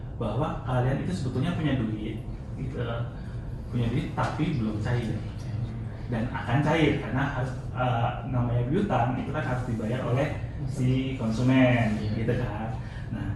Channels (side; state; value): both; identical; correlation 1.00